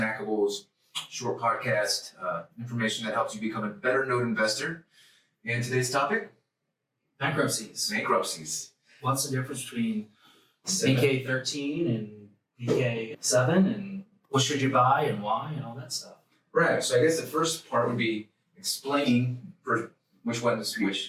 short podcast information that helps you become a better note investor. And today's topic? Bankruptcies. Bankruptcies. What's the difference between BK 13 and BK 7, and what should you buy and why and all that stuff? Right, so I guess the first part would be explaining which one is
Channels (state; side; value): identical; both; correlation 1.00